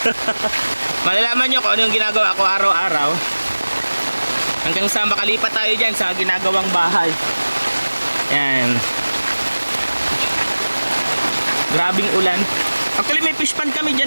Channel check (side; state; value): both; inverted; correlation -1.00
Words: Malalaman nyo kung ano yung ginagawa ko araw-araw. Hanggang sa makalipat tayo dyan sa ginagawang bahay. Yan. Grabing ulan. Actually may fish pond kami